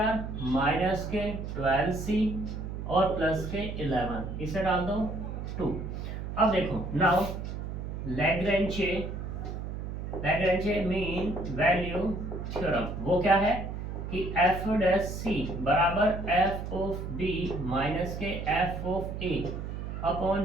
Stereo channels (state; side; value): noise; right; hum, 6 dB below the sound